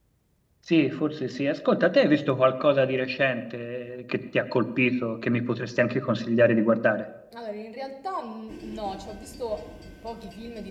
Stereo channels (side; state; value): both; identical; correlation 1.00